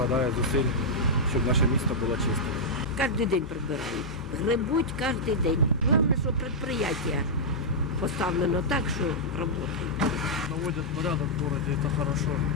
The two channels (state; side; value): normal; both; correlation -0.08